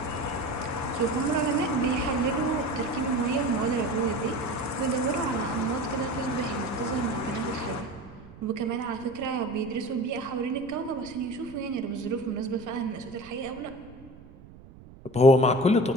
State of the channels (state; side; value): noise; right; rumble, 19 dB below the sound